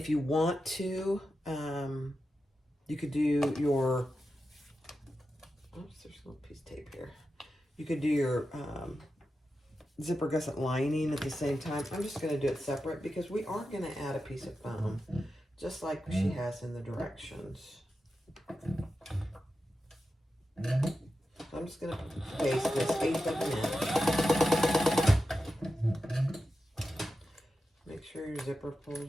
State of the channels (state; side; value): normal; both; correlation 0.91